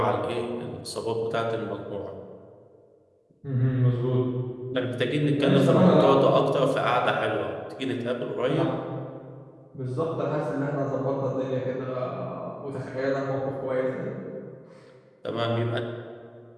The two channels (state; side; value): identical; both; correlation 1.00